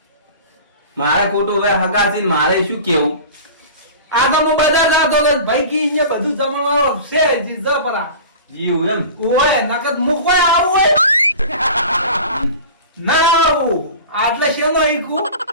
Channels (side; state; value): both; inverted; correlation -0.37